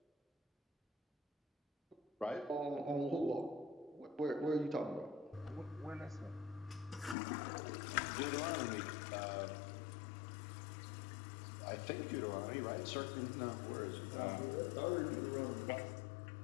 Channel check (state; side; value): drops out; right; at 7.2 s